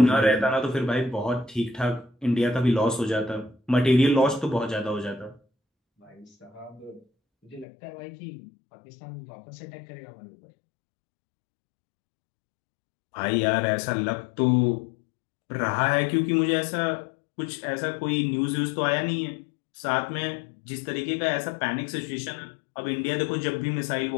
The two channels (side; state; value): right; drops out; at 7.7 s